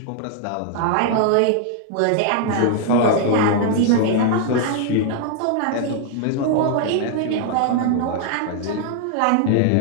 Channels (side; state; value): both; different; correlation 0.00